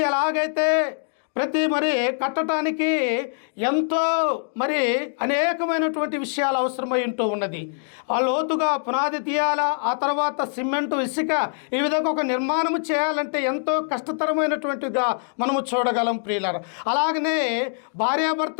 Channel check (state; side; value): silent; right; digital silence